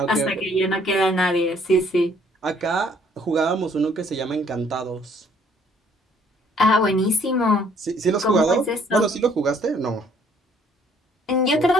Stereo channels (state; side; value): normal; both; correlation 0.62